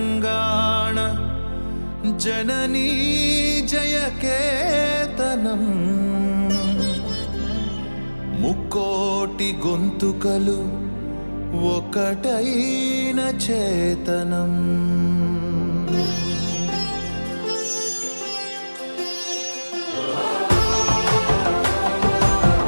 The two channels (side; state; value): both; inverted; correlation -1.00